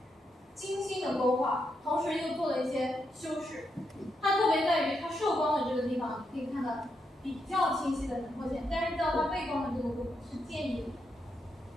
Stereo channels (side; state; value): both; normal; correlation 0.82